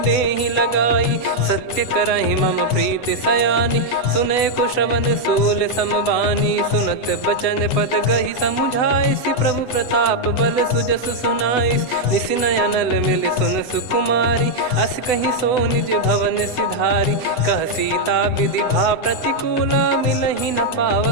लगाई। सत्य करहि मम प्रीति सयानी, सुनय को श्रवण सूल समबानी। सुनत बचन पद गहि समुझाए, सि प्रभु प्रताप बल सुजस सुनाइस। निसि नयनल मिल सुन सुकुमारी, अस कहि सो निज भवन सिधारी। कह सीता विधि भा प्रतिकूला, मिलहि न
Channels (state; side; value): late; right; 7.9 ms